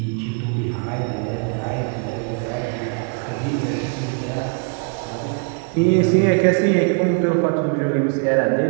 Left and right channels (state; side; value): quieter; left; 39.7 dB